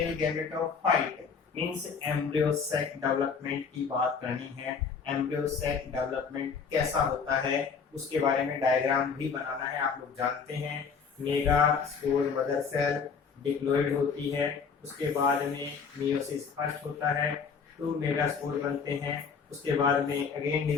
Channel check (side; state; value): right; quieter; 5.9 dB